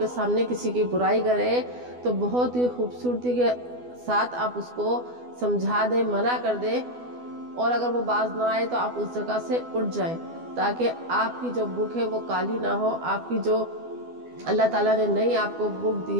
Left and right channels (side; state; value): left; late; 12 ms